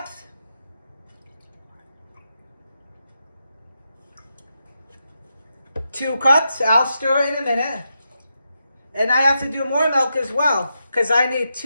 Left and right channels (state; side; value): inverted; both; correlation -0.86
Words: 2 cups. I'll stir it in a minute. And I have to do more milk as well, because I need